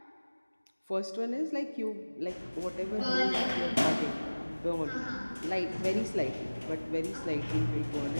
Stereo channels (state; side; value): inverted; both; correlation -1.00